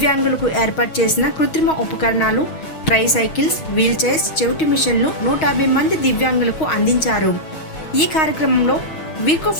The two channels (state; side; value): late; right; 6.3 ms